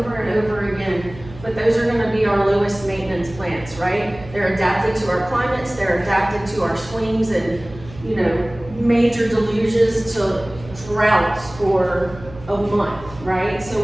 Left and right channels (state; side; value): noise; right; hum, 17 dB below the sound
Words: and over again. but those are gonna be our lowest maintenance plants, right? They're adapted to our climates, they're adapted to our swings and, you know, major deluges to droughts for a month, right? So